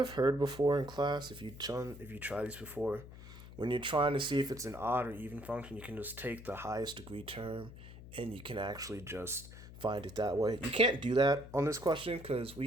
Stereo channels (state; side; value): noise; left; hum, 15 dB below the sound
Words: heard before in class, if you try these before, when you're trying to see if it's an odd or even function, you can just take the highest degree term and you can actually just find it that way. You can't do that on this question because we